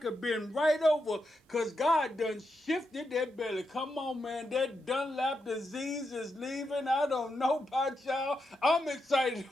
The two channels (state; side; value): normal; both; correlation 0.84